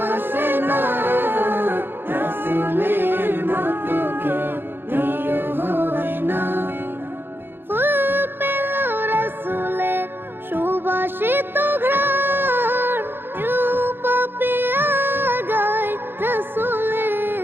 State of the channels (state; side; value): late; left; 0.10 ms